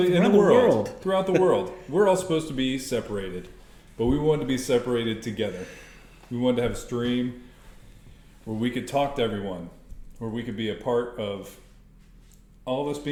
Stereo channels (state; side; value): identical; both; correlation 1.00